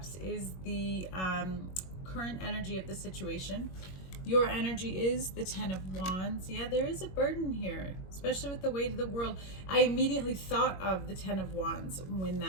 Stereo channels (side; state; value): right; late; 21 ms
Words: is the current energy of the situation. Your energy is the Ten of Wands. Yeah, there is a burden here, especially with the weight of the world. I immediately thought of the Ten of Wands when